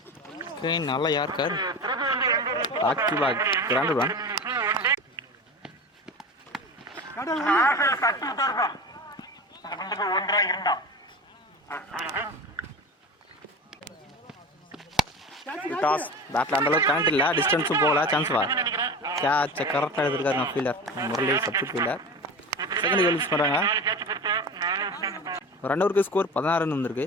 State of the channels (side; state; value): both; normal; correlation 0.31